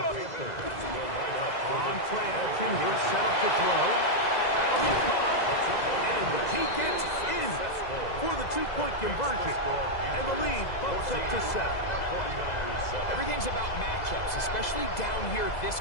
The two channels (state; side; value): late; right; 2.0 ms